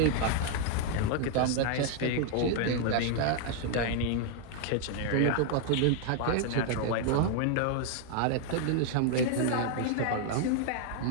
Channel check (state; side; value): different; both; correlation 0.00